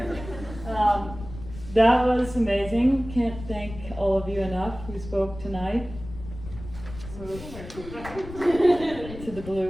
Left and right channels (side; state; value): left; noise; rumble, 13 dB below the sound